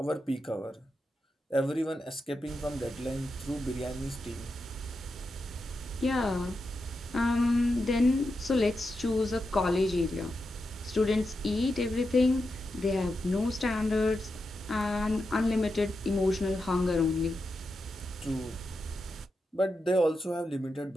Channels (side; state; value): both; normal; correlation 0.88